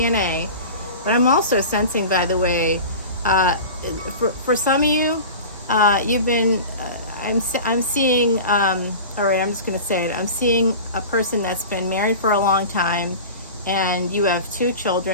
But I'm also sensing, by the way, for some of you, you've been, I'm seeing, all right, I'm just going to say it. I'm seeing a person that's been married for a long time, and you have 2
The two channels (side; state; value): both; inverted; correlation -0.34